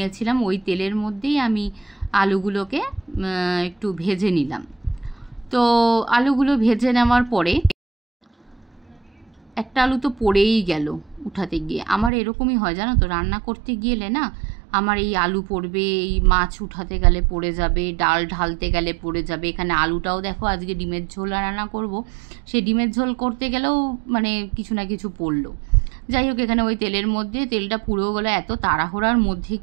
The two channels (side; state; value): left; drops out; at 12.1 s